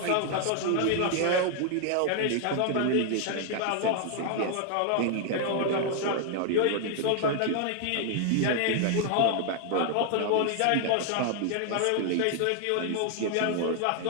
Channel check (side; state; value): both; different; correlation 0.00